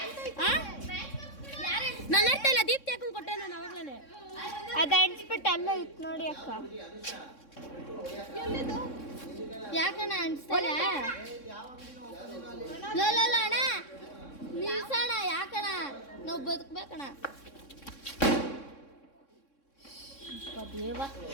ನನ್ನ ಅರ್ಥ ಇಲ್ಲ. ದೀಪ್ತಿ ಹಾಕೊಂಡು ಕೊಟ್ಟೆ ನಾನು ಅವಾಗ್ಲೇನೆ. ಅದು ಅನ್ಸ್ಬಿಟ್ಟು ಅಲ್ಲ ಇತ್ತು ನೋಡಿ ಅಕ್ಕ. ಯಾಕಣ್ಣ ಅನ್ಸ್ತಲ್ಲ ಅಣ್ಣ ನಿಲ್ಸಣ. ಯಾಕಣ್ಣ ನಾವು ಬದುಕ್ಬೇಕಣ್ಣ. ದೇವ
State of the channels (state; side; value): late; right; 3.6 ms